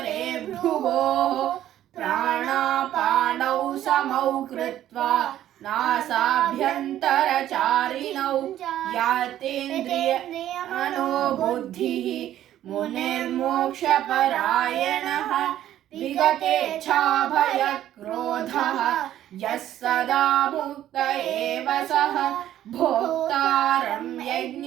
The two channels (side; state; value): left; quieter; 12.3 dB